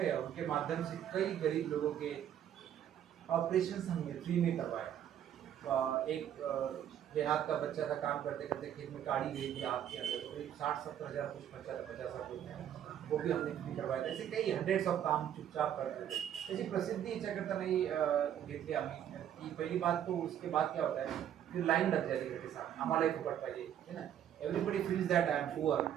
और उनके माध्यम से कई गरीब लोगों के ऑपरेशन हमने फ्री में करवाए। एक देहात का बच्चा था, काम करते करते खेत में काड़ी गई थी हाथ के अंदर, तो करीब 60-70 हज़ार कुछ खर्चा था, 50 रुपये, वो भी हमने फ्री करवाया था। ऐसे कई हंड्रेड्स ऑफ काम चुपचाप करते थे। त्याची प्रसिद्धी याच्याकरता नाही घेतली आम्ही की पहिली बात। तो उसके बाद क्या होता है, फिर लाइन लग जाती है, साथ आम्हालाही फुकट पाहिजे, है ना। Everybody feels that I am poor,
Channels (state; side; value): quieter; left; 10.2 dB